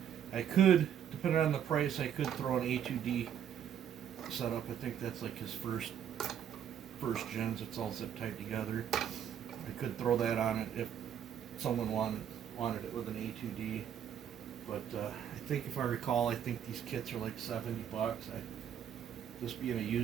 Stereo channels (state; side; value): quieter; left; 9.2 dB